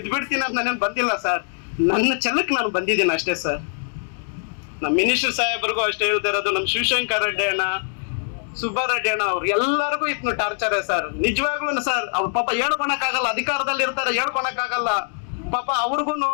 ಬಿಡ್ತೀನಿ ಅಂತ ನಾನೇನು ಬಂದಿಲ್ಲ ಸರ್. ನನ್ನ ಛಲಕ್ಕೆ ನಾನು ಬಂದಿದ್ದೀನಿ ಅಷ್ಟೇ ಸರ್. ನಮ್ಮ ಮಿನಿಸ್ಟರ್ ಸಾಹೇಬ್ರಿಗೂ ಅಷ್ಟೇ ಹೇಳ್ತಾ ಇರೋದು, ನಮ್ಮ ಶಿವಶಂಕರ್ ರೆಡ್ಡಿ ಅಣ್ಣ, ಸುಬ್ಬಾರೆಡ್ಡಿ ಅಣ್ಣ ಅವ್ರು ಎಲ್ಲರಿಗೂ ಇತ್ತು ಟಾರ್ಚರ್ ಸರ್. ನಿಜವಾಗ್ಲೂ ಸರ್, ಅವ್ರು ಪಾಪ ಹೇಳ್ಕೊಳಕ್ಕಾಗಲ್ಲ, ಅಧಿಕಾರದಲ್ಲಿ ಇರ್ತಾರೆ, ಹೇಳ್ಕೊಳಕ್ಕಾಗಲ್ಲ ಪಾಪ. ಅವ್ರಿಗೂ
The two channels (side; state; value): right; silent; digital silence